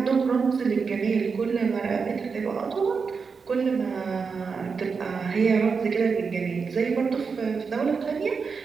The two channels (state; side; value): quieter; left; 5.3 dB